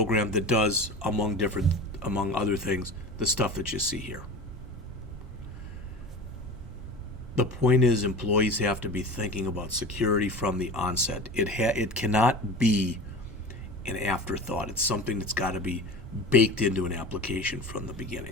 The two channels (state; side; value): normal; both; correlation 0.33